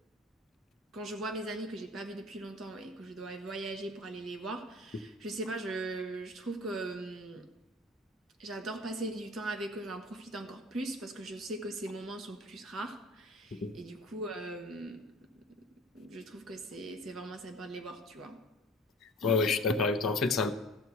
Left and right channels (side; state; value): both; normal; correlation 0.44